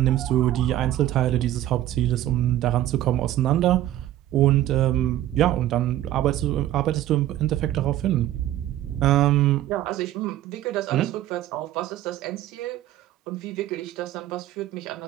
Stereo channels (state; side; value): quieter; left; 13.4 dB